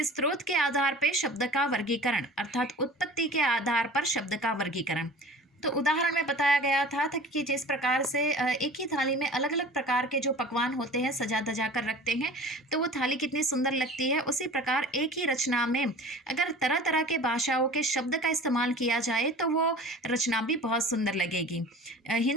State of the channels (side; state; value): both; normal; correlation 0.41